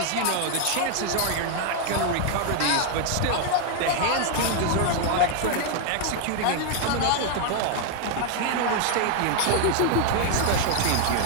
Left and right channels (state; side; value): different; both; correlation 0.00